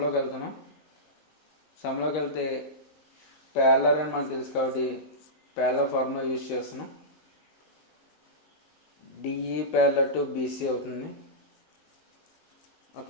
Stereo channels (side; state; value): right; late; 19 ms